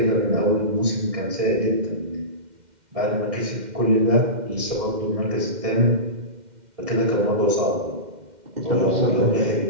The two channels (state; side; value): late; left; 2.1 ms